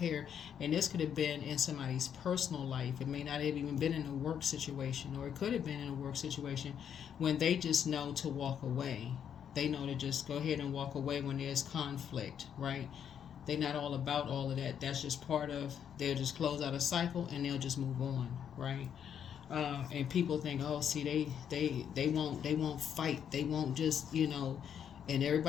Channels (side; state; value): right; quieter; 8.5 dB